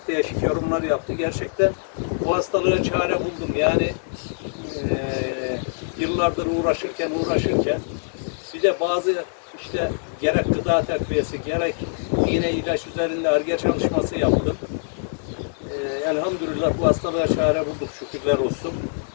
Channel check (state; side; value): silent; right; digital silence